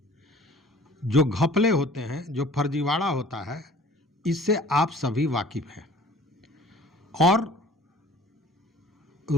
जो घपले होते हैं, जो फर्जीवाड़ा होता है, इससे आप सभी वाकिफ हैं। और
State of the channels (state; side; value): normal; both; correlation 0.49